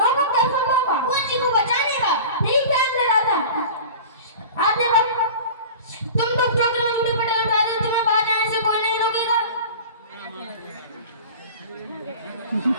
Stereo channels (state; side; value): inverted; both; correlation -0.37